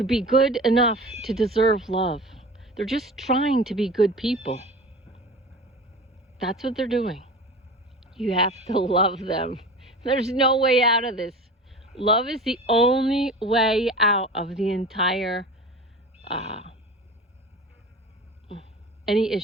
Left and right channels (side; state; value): both; normal; correlation 0.35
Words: be good enough to deserve love. They're just trying to be good people. That's what they're doing. You have to love them. There's no way out of this. Love is the only way out of the entire any